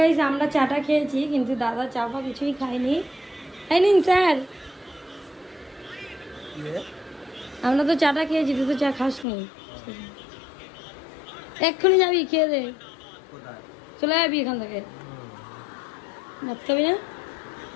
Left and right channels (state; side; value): drops out; right; at 9.2 s